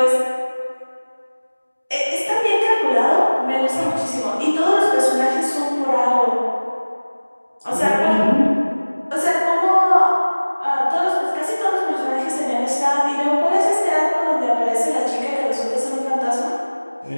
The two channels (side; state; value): both; inverted; correlation -1.00